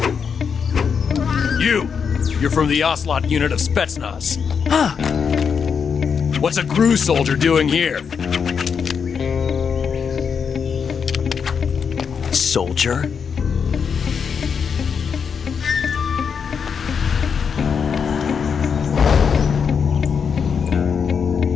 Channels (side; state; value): right; quieter; 6.5 dB